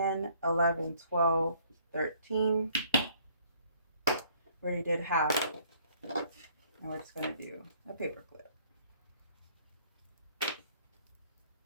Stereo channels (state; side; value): inverted; both; correlation -0.61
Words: 11, 12, 13. We already did half. And we're just going to do a paper clip.